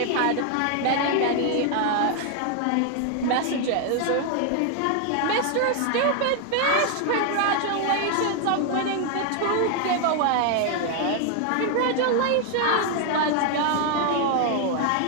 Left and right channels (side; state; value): both; different; correlation 0.00